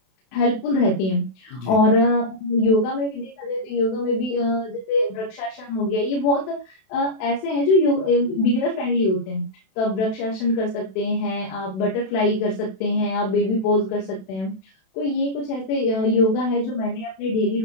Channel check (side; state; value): right; late; 32 ms